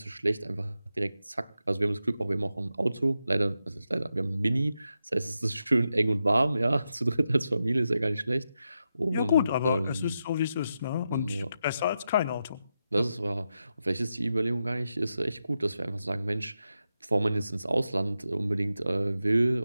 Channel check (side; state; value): both; inverted; correlation -0.88